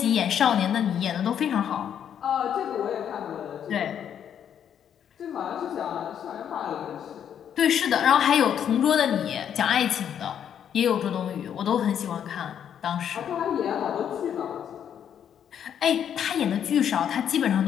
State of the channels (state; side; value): quieter; right; 9.0 dB